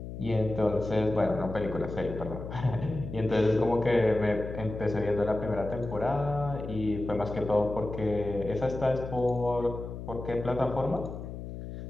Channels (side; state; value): left; noise; hum, 9 dB below the sound